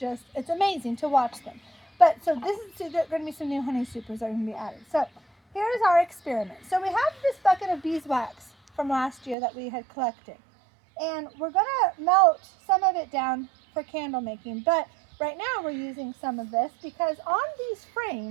it's amazing to watch them. But so there's going to be some new honey supers that are going to be added. So here's our experiment. So we have this bucket of beeswax from last year that we had collected. And we're going to melt some of it down for candle making. But right now we're using some of this because on these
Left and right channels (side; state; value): left; drops out; at 9.3 s